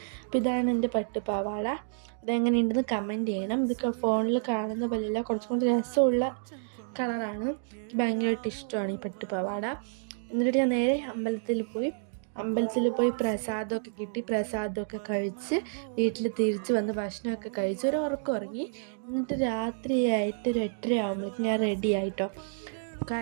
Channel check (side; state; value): left; silent; digital silence